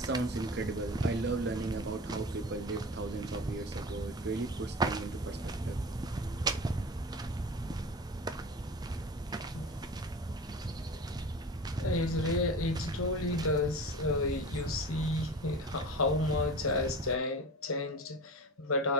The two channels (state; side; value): normal; both; correlation 0.33